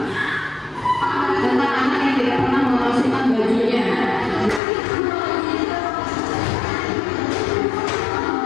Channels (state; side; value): drops out; right; at 4.6 s